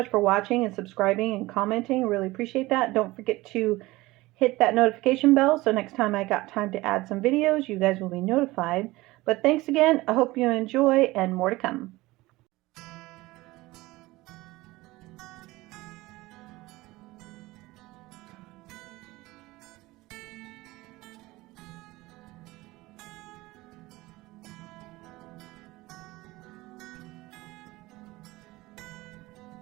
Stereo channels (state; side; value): quieter; left; 19.8 dB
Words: for watching and subscribing and commenting. Really appreciate that. Don't forget to hit that notification bell so next time I got time to add some videos, you guys will be notified. But thanks again. I hope you enjoy, and more to come.